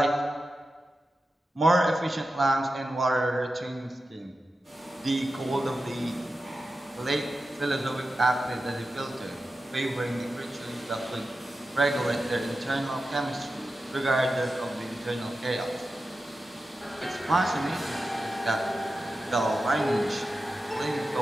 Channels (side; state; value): both; normal; correlation 0.92